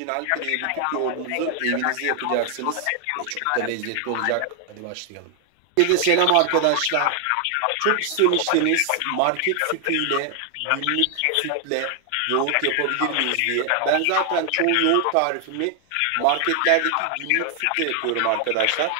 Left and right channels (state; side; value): different; both; correlation 0.00